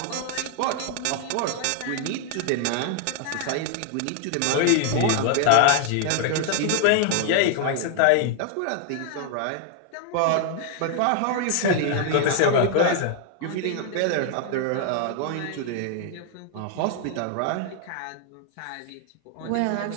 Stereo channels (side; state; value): both; different; correlation 0.00